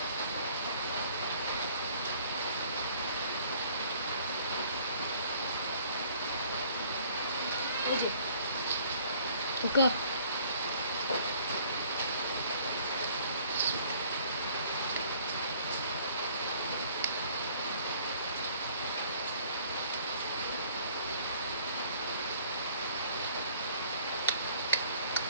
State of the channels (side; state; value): both; inverted; correlation -0.57